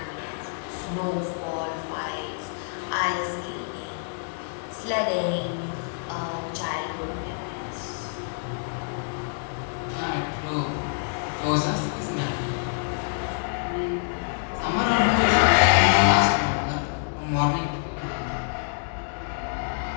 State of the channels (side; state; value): right; silent; digital silence